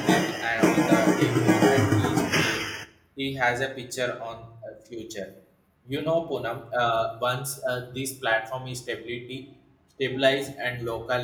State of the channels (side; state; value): both; identical; correlation 1.00